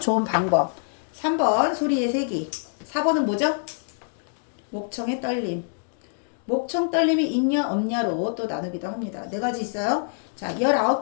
방법, 3번 소리의 세기, 4번은 뭐죠? 목청의 떨림. 목청 떨림이 있냐 없냐로 또 나누기도 합니다. 네 가지 있어요. 자,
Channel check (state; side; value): silent; right; digital silence